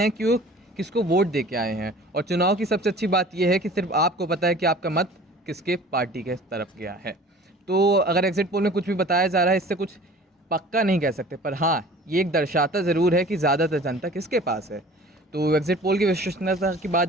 कि वो किसको वोट दे के आए हैं। और चुनाव की सबसे अच्छी बात यह है कि सिर्फ आपको पता है कि आपका मत किसके पार्टी के तरफ गया है। तो अगर एग्जिट पोल में कुछ भी बताया जा रहा है, इससे कुछ पक्का नहीं कह सकते, पर हाँ ये एक दर्शाता ज़रूर है कि ज़्यादातर जनता किसके पास है। तो एग्जिट पोल की विश्वसनीयता की बात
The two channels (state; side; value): normal; both; correlation 0.45